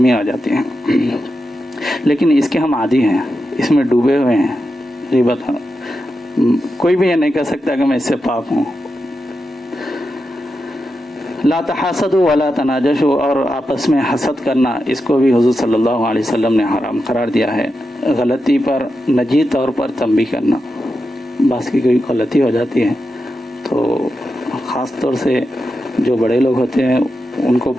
آ جاتے ہیں، لیکن اس کے ہم عادی ہیں، اس میں ڈوبے ہوئے ہیں۔ غیبت کوئی بھی یہ نہیں کہہ سکتا کہ میں اس سے پاک ہوں۔ لا تحاسدوا ولا تناجشوا، اور آپس میں حسد کرنا، اس کو بھی حضور صلی اللہ علیہ وسلم نے حرام قرار دیا ہے۔ غلطی پر نجی طور پر تنبیہ کرنا، بعض کی کوئی غلطی ہو جاتی ہے تو خاص طور سے جو بڑے لوگ ہوتے ہیں ان کو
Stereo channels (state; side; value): normal; both; correlation 0.88